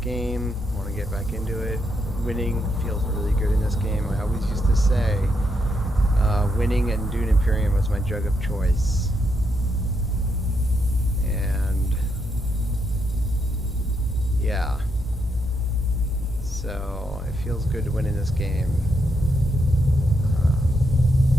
Want to get back into it. Winning feels really good in this game. I always used to say winning at Dune Imperium was my drug of choice. And yeah. So it feels good to win in this game.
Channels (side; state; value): both; normal; correlation 0.79